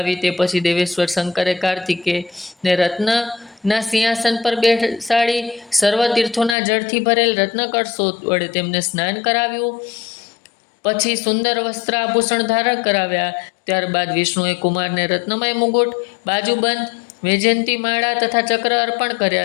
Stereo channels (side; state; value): right; drops out; at 6.6 s